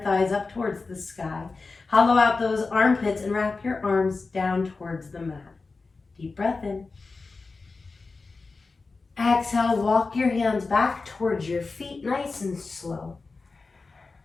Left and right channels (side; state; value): right; quieter; 4.0 dB